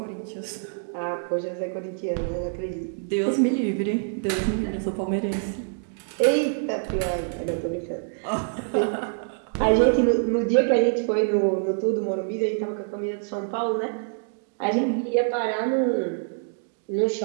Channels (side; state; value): left; silent; digital silence